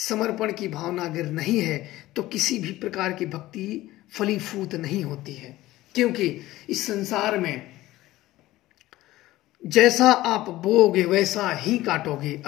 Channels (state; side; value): quieter; right; 16.6 dB